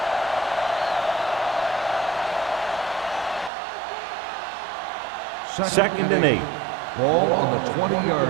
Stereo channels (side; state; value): left; drops out; at 3.5 s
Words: Second and 8. Ball on the